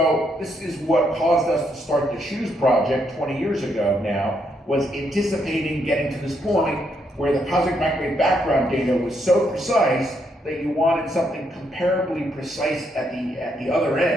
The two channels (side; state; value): both; normal; correlation 0.76